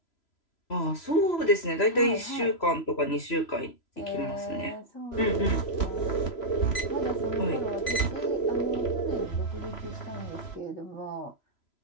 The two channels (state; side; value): late; right; 3.0 ms